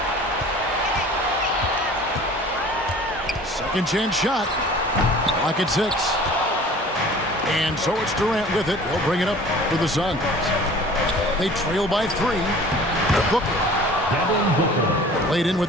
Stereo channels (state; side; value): normal; both; correlation 0.46